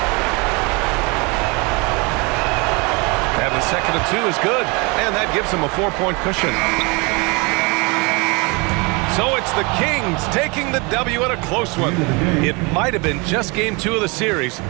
And the second of 2 is good. And that gives him a 4-point cushion. So it's the Kings taking the W in a close one. It might have been just game 2 of the series,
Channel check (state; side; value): quieter; left; 28.9 dB